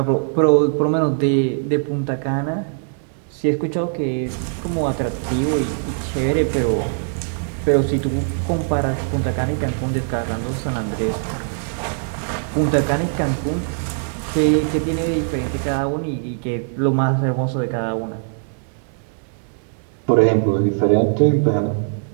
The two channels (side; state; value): left; silent; digital silence